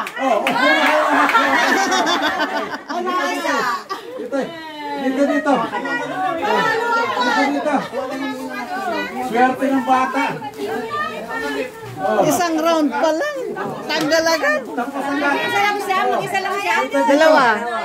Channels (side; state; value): both; identical; correlation 1.00